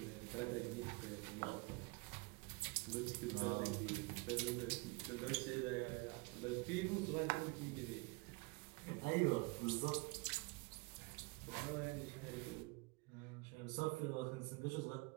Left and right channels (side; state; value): left; quieter; 27.4 dB